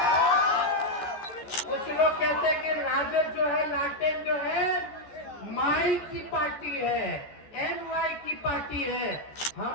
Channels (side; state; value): right; late; 14 ms